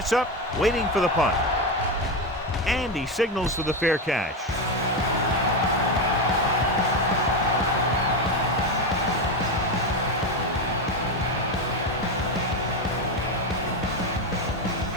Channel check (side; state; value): both; normal; correlation 0.13